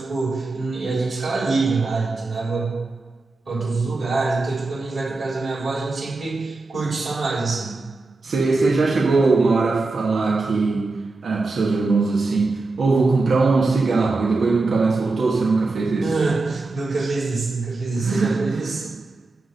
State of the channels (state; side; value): quieter; left; 3.5 dB